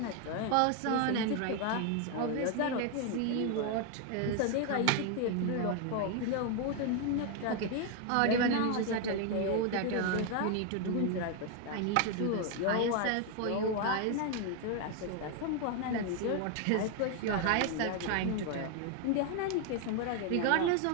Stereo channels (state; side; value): different; both; correlation 0.01